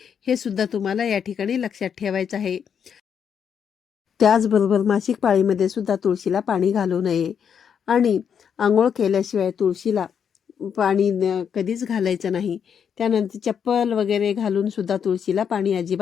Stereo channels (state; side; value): quieter; right; 7.6 dB